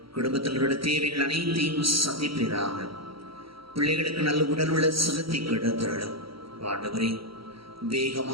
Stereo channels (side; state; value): left; late; 0.75 ms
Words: குடும்பத்தினருடைய தேவைகள் அனைத்தையும் சந்திப்பீராக. பிள்ளைகளுக்கு நல்ல உடல் உள்ள சுகத்தை கிடைத்திரளும். ஆண்டவரே,